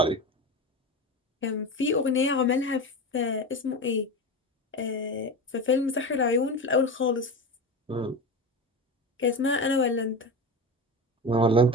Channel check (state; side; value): normal; both; correlation 0.24